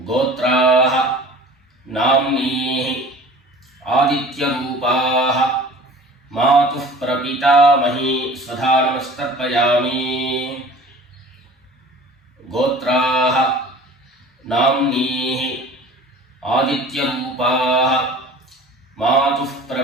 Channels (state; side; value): normal; both; correlation 0.44